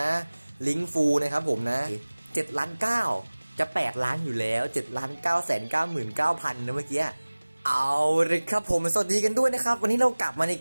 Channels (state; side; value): inverted; both; correlation -1.00